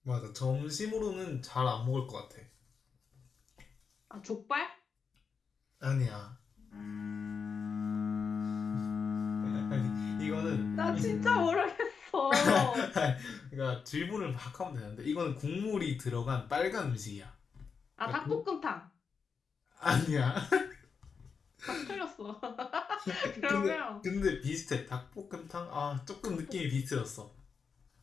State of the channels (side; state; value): right; quieter; 5.8 dB